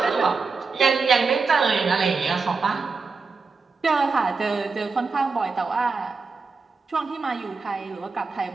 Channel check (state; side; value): quieter; left; 4.5 dB